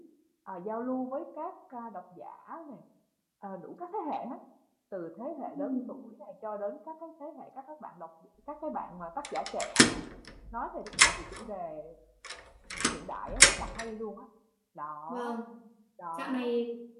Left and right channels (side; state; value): both; identical; correlation 1.00